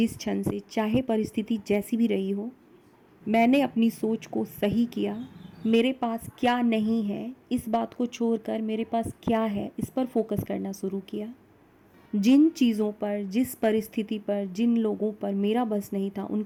क्षण से, चाहे परिस्थिति जैसी भी रही हो, मैंने अपनी सोच को सही किया। मेरे पास क्या नहीं है इस बात को छोड़कर मेरे पास क्या है इस पर फोकस करना शुरू किया। जिन चीज़ों पर, जिस परिस्थिति पर, जिन लोगों पर मेरा बस नहीं था,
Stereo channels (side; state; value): both; identical; correlation 1.00